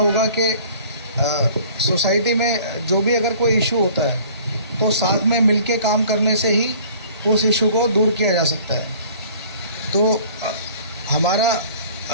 कि सोसाइटी में जो भी अगर कोई इशू होता है तो साथ में मिलके काम करने से ही उस इशू को दूर किया जा सकता है। तो हमारा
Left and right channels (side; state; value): both; inverted; correlation -0.50